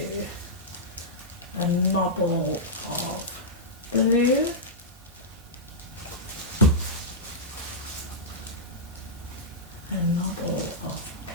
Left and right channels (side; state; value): both; normal; correlation -0.12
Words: a nobble of blue. A nobble of